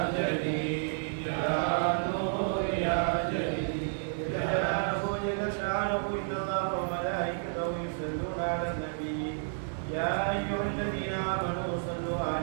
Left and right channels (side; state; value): left; silent; digital silence